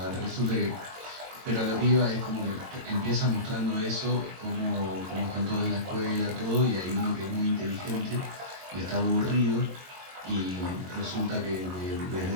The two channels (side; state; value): left; late; 22 ms